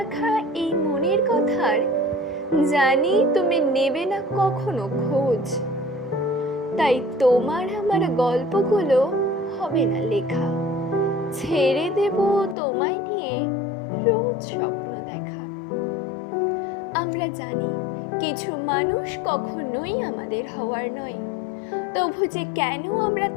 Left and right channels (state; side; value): drops out; right; at 12.6 s